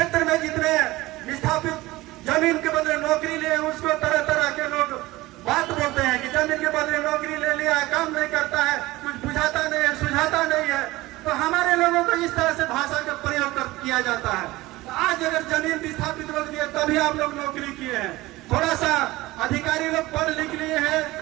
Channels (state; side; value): quieter; left; 19.0 dB